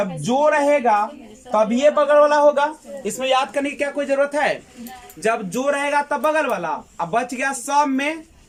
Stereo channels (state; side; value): identical; both; correlation 1.00